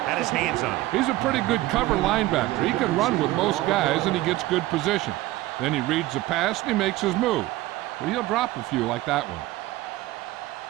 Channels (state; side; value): quieter; left; 17.2 dB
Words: had his hands on it. He's a pretty good cover linebacker. He can run with most guys, and he gets good position. Then he reads the pass, and he makes his move. But he'll drop a few like that one.